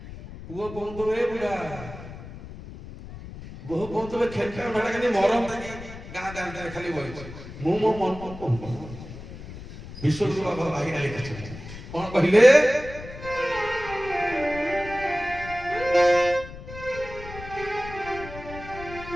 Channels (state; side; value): noise; left; rumble, 13 dB below the sound